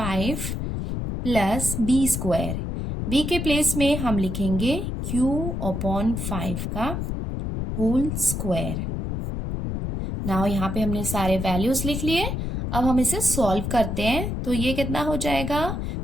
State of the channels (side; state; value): left; noise; rumble, 3 dB below the sound